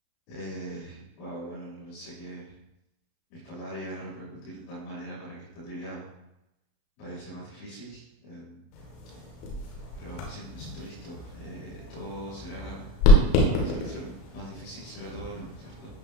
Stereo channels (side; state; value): right; late; 32 ms